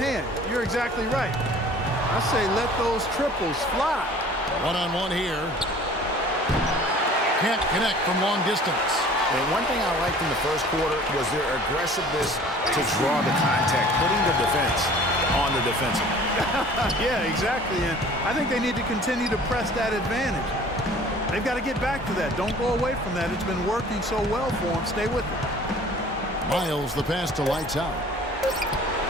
You're exactly right. I say let those triples fly. One-on-one here. Can't connect from long distance. And one thing I liked in the first quarter was their aggressiveness to draw the contact, putting the defense on the defensive. Yeah, exactly. And I think they need to continue to press that advantage. They've got to get back to that. Don't go away from that. It's been working so well for them. Stay with it. Miles the pass to Lights Out.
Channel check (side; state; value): both; normal; correlation 0.48